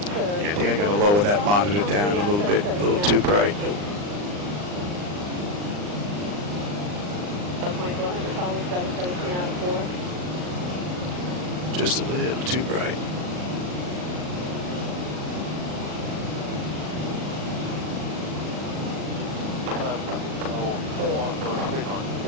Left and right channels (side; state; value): left; late; 39 ms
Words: Yeah, I think I got to lower that monitor down a little bit, a little too bright. 2400 followed 717 out of 4. Just a little too bright.